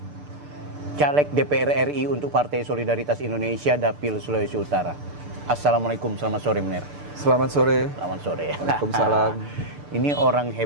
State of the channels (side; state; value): left; late; 6.8 ms